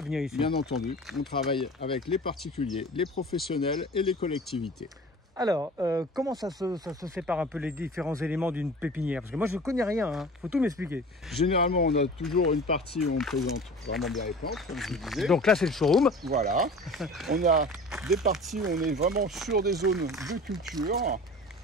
ici. Bien entendu, on travaille avec les particuliers, les professionnels et les collectivités. Alors, comment ça se sépare un peu les différents éléments d'une pépinière? Parce que moi, je ne connais rien, hein. Faut tout m'expliquer. Généralement, on a toujours une partie où on présente vraiment bien les plantes, comme je vous disais. Donc là, c'est le showroom. Voilà. On a des parties où on est vraiment sur des zones de culture,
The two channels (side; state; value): both; normal; correlation 0.40